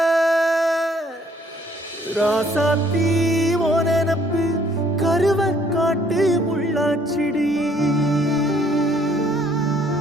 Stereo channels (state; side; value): normal; both; correlation 0.63